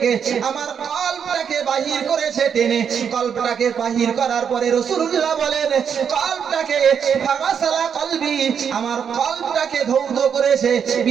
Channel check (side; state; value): left; quieter; 7.4 dB